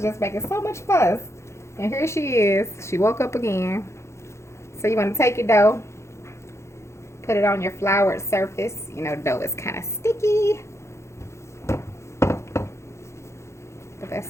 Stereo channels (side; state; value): right; late; 0.13 ms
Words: just making so much fuss. And here she is. She woke up again. So you want to take your dough. Put it on your floured surface. You know, dough is kind of sticky. But